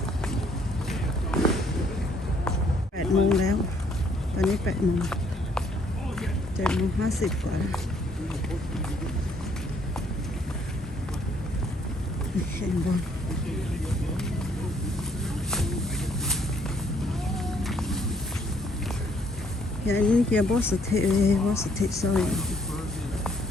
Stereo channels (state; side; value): normal; both; correlation 0.66